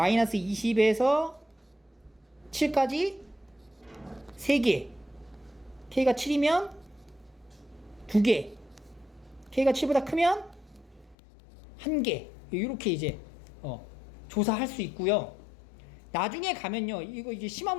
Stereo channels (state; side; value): drops out; right; at 11.2 s